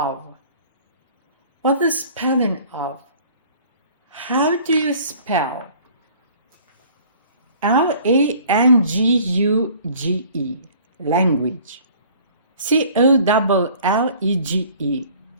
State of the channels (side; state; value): both; inverted; correlation -0.51